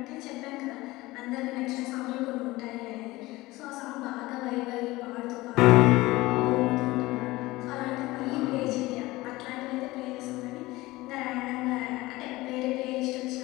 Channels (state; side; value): quieter; right; 19.7 dB